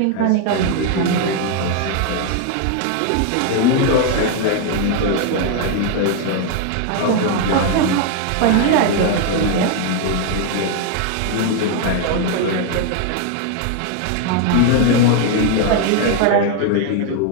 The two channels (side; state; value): both; different; correlation 0.00